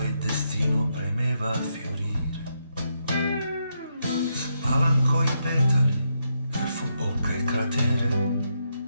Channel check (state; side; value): inverted; both; correlation -0.80